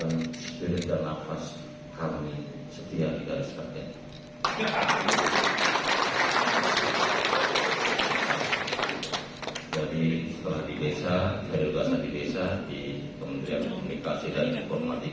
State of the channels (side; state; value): both; identical; correlation 1.00